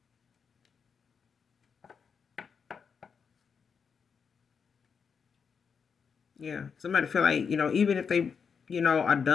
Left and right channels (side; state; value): right; quieter; 6.2 dB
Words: yeah, somebody feel like, even if they, are